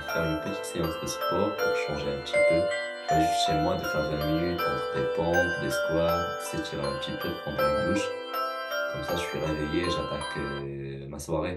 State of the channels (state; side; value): identical; both; correlation 1.00